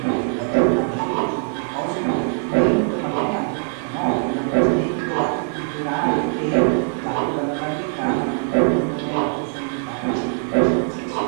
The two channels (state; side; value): silent; left; 61 dB below the other